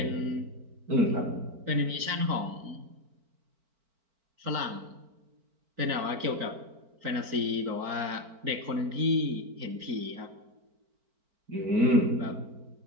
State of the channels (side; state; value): left; late; 4.5 ms